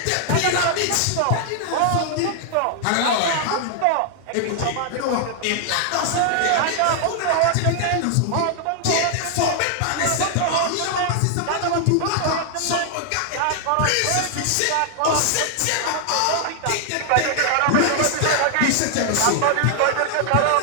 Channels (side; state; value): both; different; correlation 0.00